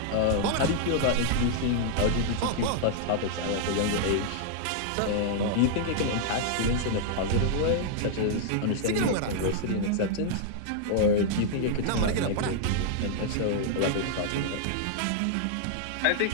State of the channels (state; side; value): different; both; correlation -0.01